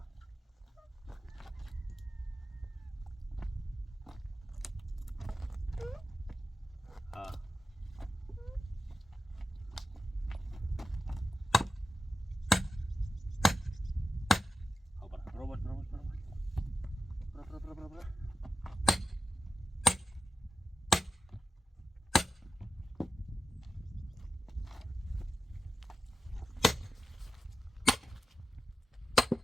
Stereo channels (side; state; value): both; normal; correlation 0.91